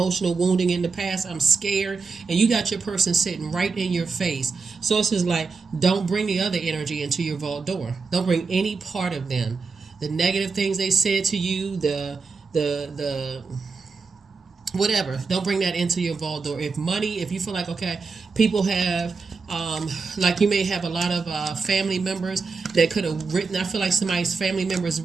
wounding in the past, I'm scared, and you got your person sitting right in your face. Source is like, don't bring the other energy into your vault door. Don't bring any part of them. The negative things they said to you, the whatever, don't bring that into your vault door. If you feel like, okay, people have like you may have a lot of family members that could have written, I feel like somebody's family members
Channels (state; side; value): quieter; left; 4.6 dB